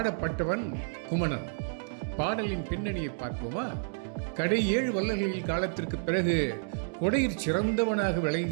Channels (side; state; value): left; silent; digital silence